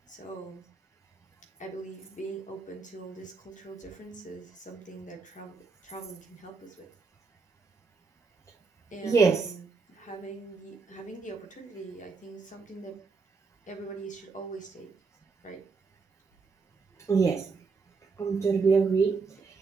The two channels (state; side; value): quieter; left; 4.7 dB